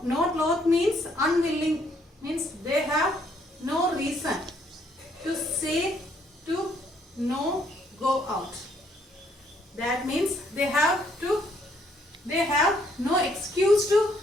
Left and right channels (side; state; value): both; normal; correlation 0.68